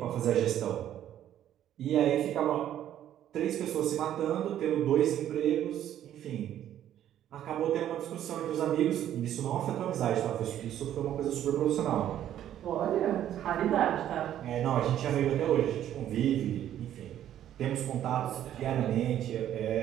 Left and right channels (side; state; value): left; quieter; 11.3 dB